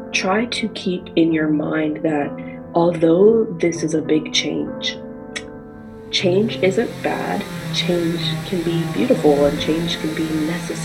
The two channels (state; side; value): identical; both; correlation 1.00